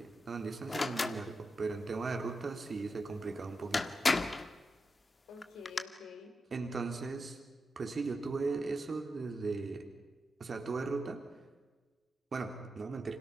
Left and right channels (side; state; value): both; normal; correlation 0.88